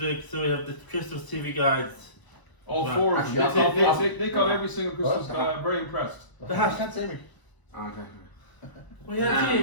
so we have the Christmas TV guides. All Well, four of them. actually, They got every single Christmas. Very impressed. The hat. You can't see me. Okay. Well, yeah,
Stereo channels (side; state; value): right; late; 1.0 ms